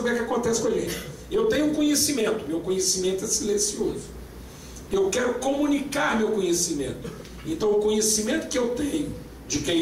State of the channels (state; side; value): identical; both; correlation 1.00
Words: é que acontece com a gente. Eu tenho um conhecimento, meu conhecimento é silencioso. Eu quero comunicar meu conhecimento. Então o conhecimento que eu tenho de quem